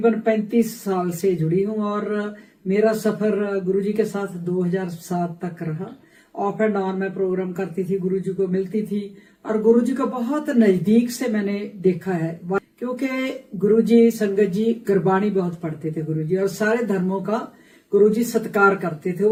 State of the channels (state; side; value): identical; both; correlation 1.00